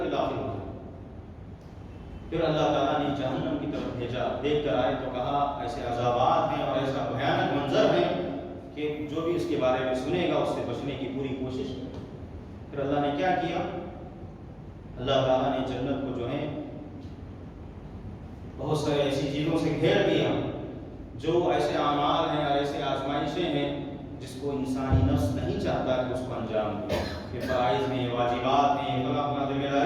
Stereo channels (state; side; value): identical; both; correlation 1.00